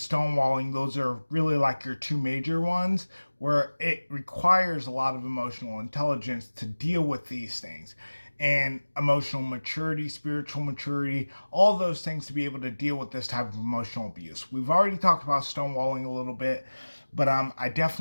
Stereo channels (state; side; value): inverted; both; correlation -1.00